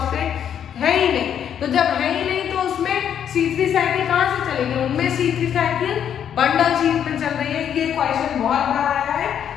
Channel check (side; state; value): right; quieter; 9.0 dB